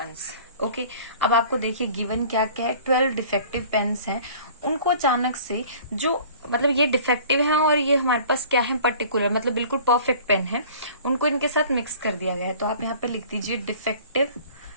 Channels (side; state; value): both; inverted; correlation -0.47